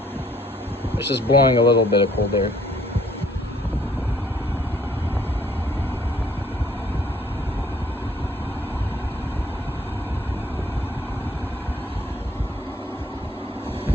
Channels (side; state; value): both; normal; correlation 0.62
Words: It's just blowing a little bit of cold air.